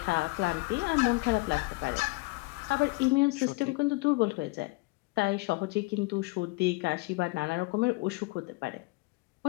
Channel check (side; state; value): right; quieter; 24.9 dB